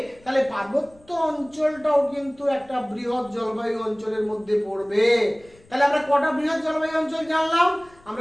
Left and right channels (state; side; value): noise; left; rumble, 28 dB below the sound